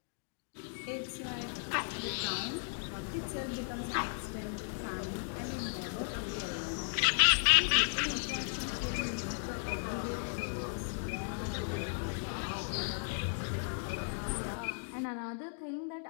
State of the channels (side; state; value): right; silent; digital silence